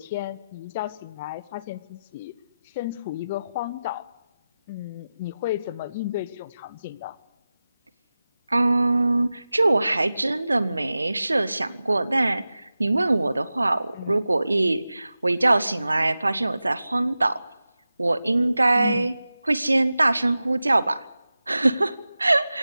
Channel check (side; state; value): both; inverted; correlation -0.94